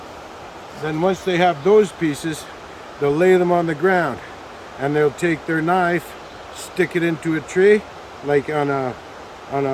Then once they have those pieces, they'll lay them on the ground, and they'll take their knife, stick it into a tree, like on a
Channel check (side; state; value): both; identical; correlation 1.00